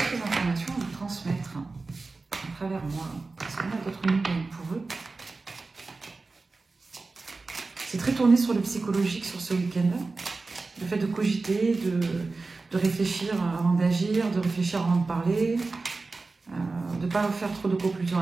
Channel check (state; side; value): quieter; left; 3.8 dB